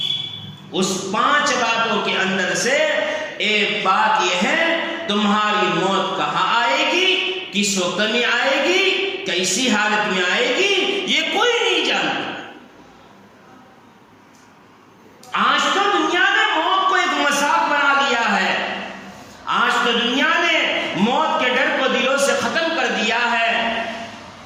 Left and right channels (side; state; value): both; identical; correlation 1.00